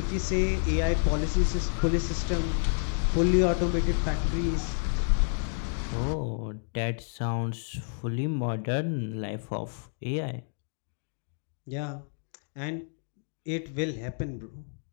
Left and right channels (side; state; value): right; silent; digital silence